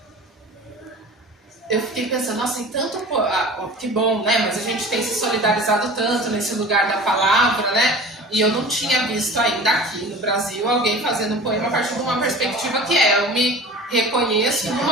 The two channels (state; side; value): normal; both; correlation 0.39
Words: Eu fiquei pensando, nossa, tem tanto... que bom, né? Mas a gente tem se solidarizado tanto nesse lugar da palavra, né? E eu não tinha visto ainda aqui no Brasil alguém fazendo um poema a partir de uma perspectiva que eu me reconheço